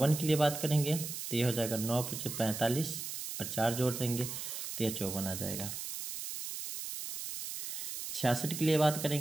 के लिए बात करेंगे तो यह हो जाएगा 9 × 45 और 4 जोड़ देंगे तो यह 54 आ जाएगा। 66 के लिए बात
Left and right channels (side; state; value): right; noise; hiss, 6 dB below the sound